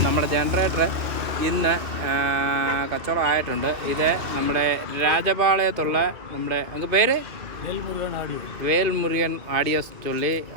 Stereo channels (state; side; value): late; left; 2.5 ms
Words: നമ്മുടെ ജനറേറ്റർ ഇന്ന് കച്ചവടം ആയിട്ടുണ്ട്. ഇത് നമ്മുടെ രാജപാളയത്തുള്ള നമ്മുടെ അങ്ങ് പേര് വേൽമുരുകൻ ആഡിയോസ് ചൊല്ലി